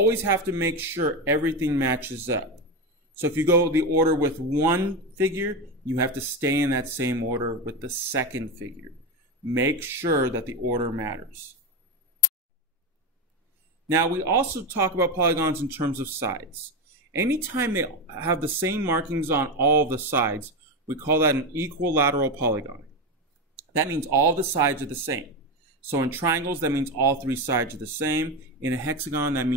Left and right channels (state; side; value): normal; both; correlation 0.15